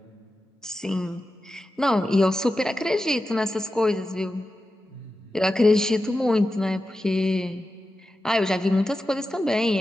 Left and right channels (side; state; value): both; normal; correlation 0.92